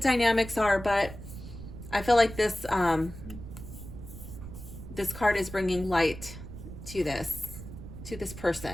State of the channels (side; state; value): right; noise; rumble, 12 dB below the sound